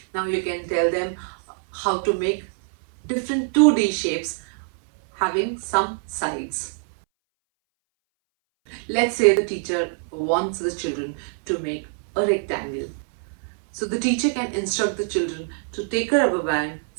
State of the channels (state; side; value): silent; left; 61 dB below the other